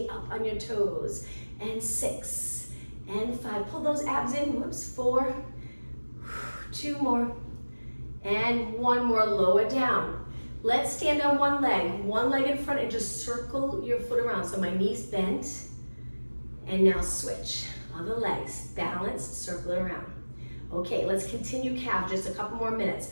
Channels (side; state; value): both; inverted; correlation -1.00